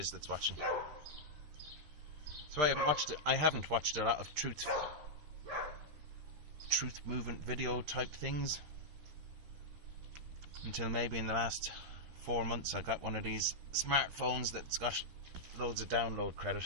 that's watching. So I haven't watched a lot of truth movement video type things until maybe in the last 4 months. I got one of these smartphones that's got loads of download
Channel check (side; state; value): left; late; 13 ms